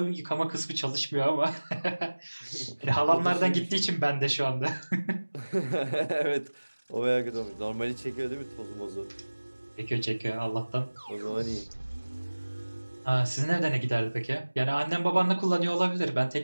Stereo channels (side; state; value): both; inverted; correlation -1.00